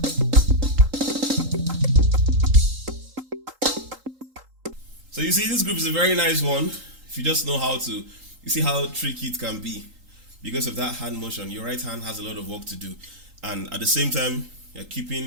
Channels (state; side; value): late; left; 3.8 ms